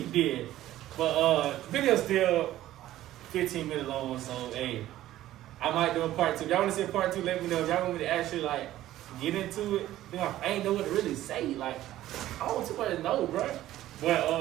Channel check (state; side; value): quieter; left; 14.1 dB